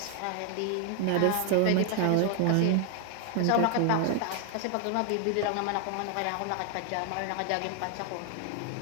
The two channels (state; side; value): different; both; correlation 0.00